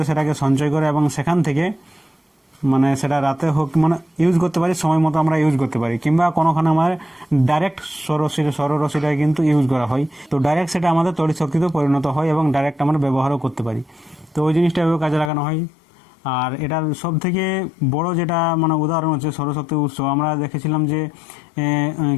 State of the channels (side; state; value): right; drops out; at 15.3 s